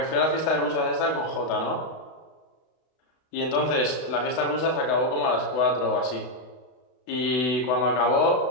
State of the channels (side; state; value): right; late; 32 ms